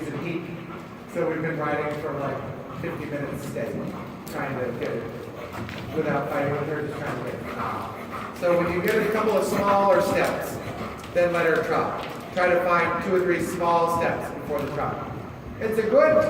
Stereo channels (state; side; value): identical; both; correlation 1.00